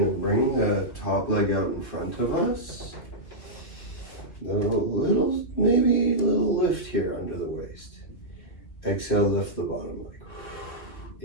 to bring the top leg out in front of us. Maybe a little lift here under the waist. Exhale, lift the bottom leg.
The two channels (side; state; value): right; late; 2.2 ms